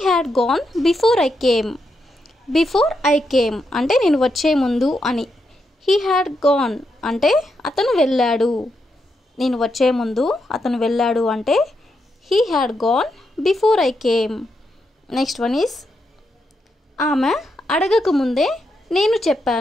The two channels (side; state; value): both; normal; correlation 0.82